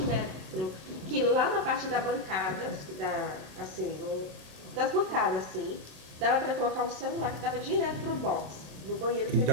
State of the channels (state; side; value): late; left; 27 ms